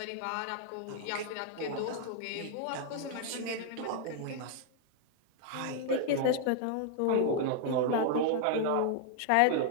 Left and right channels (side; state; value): both; different; correlation 0.00